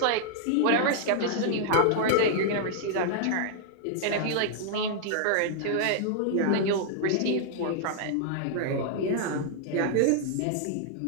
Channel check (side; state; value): both; different; correlation -0.01